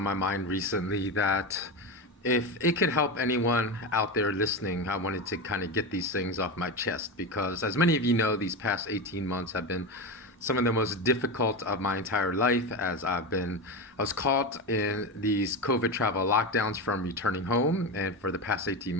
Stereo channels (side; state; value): both; normal; correlation 0.19